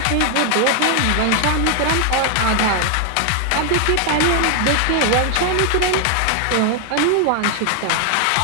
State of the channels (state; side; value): different; both; correlation 0.00